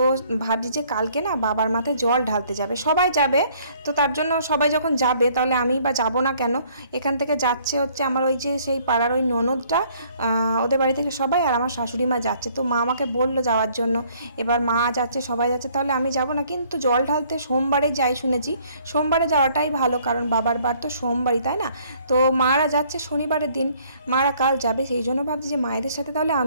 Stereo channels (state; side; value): inverted; both; correlation -0.61